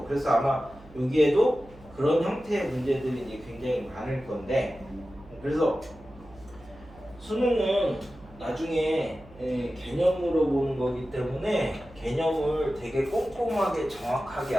그래서 아마 여기에도 그런 형태의 문제들이 이제 굉장히 많을 건데, 그래서 수능은 나중에 개념으로 보는 거기 때문에 개념을 되게 꼼꼼하게 정확하게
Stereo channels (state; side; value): noise; right; hum, 22 dB below the sound